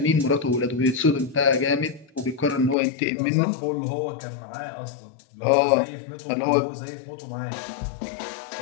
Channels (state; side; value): drops out; right; at 2.8 s